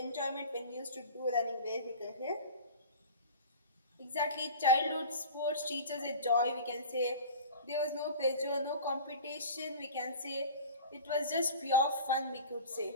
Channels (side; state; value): both; inverted; correlation -0.37